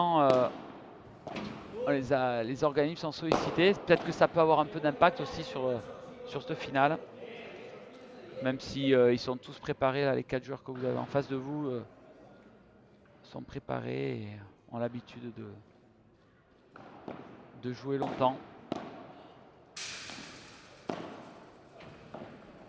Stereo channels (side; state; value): both; identical; correlation 1.00